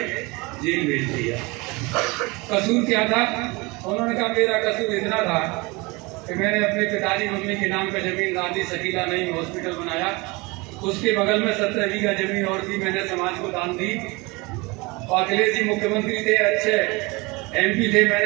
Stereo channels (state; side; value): quieter; left; 25.4 dB